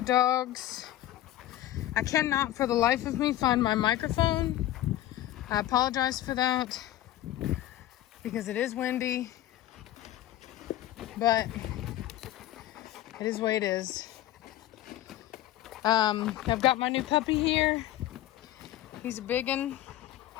dogs. I cannot for the life of me find my microphone. I apologize for that because it is windy, but it is the way it is. I've got my new puppy here. He's a big one,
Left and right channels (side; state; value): right; quieter; 14.0 dB